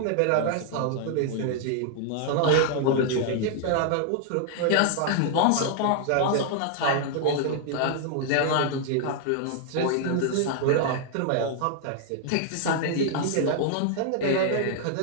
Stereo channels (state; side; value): different; both; correlation 0.00